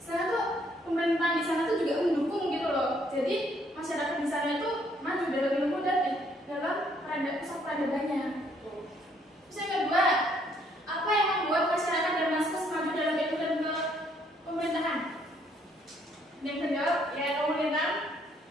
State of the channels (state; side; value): normal; both; correlation 0.67